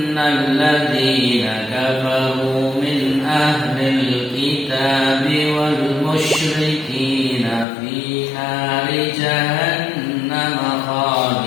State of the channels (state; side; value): drops out; right; at 7.7 s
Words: ladzina kafaru min ahlil kitabi wal musyrikina fi nari jahannam